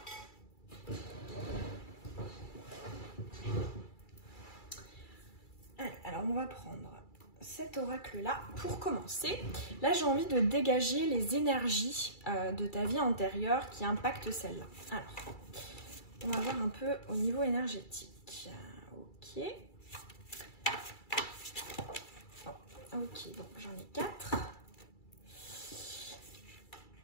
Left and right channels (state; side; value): late; right; 2.3 ms